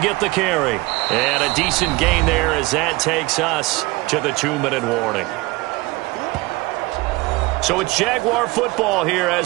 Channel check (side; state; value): left; quieter; 22.2 dB